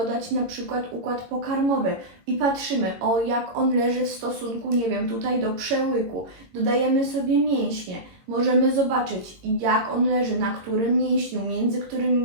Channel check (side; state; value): left; late; 22 ms